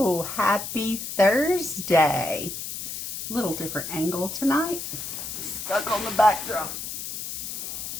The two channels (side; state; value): left; noise; hiss, 6 dB below the sound